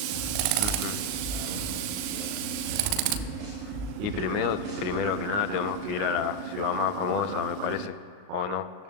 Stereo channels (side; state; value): left; late; 39 ms